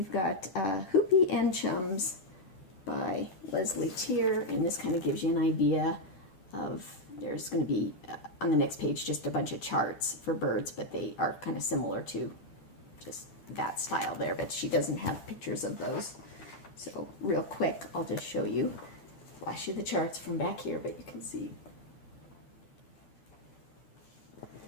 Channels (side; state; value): right; late; 11 ms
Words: got Hoopy and Chums by Leslie Tier, and this kind of gives you an idea of, there's going to be on the next page just a bunch of charts for birds, but they are kind of similar to just that style there, but she doesn't have pictures of those. So real quick, I'll just show you, flash you the charts from back here, but you can see